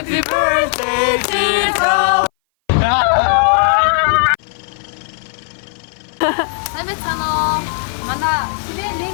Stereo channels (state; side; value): silent; right; 59 dB below the other